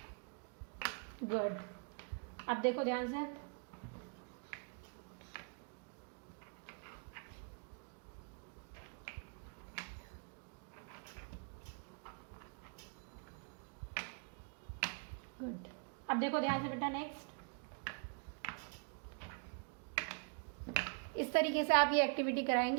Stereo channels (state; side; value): quieter; left; 39.9 dB